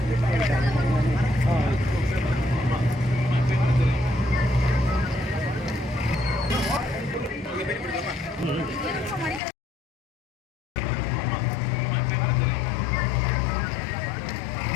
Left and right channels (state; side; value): drops out; right; at 9.4 s